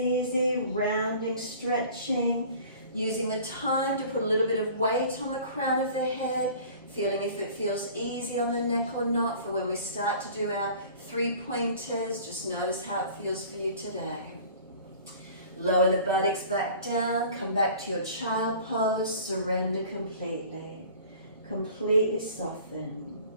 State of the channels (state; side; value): inverted; both; correlation -0.46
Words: rounding, stretching, using the time to put a little bit of weight on the crown of the head, feeling if it feels easy on the neck or not for when we start to do our 3 pointers. Just notice how it feels for you today. Lower the buttocks back down, come back to your child pose, surrender completely. Completely soften.